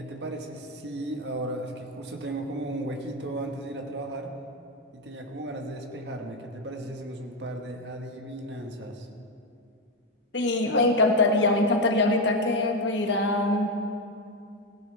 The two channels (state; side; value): normal; both; correlation 0.10